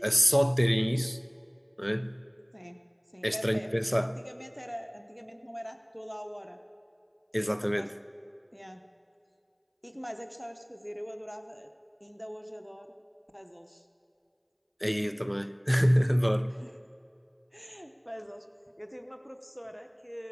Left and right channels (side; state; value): both; identical; correlation 1.00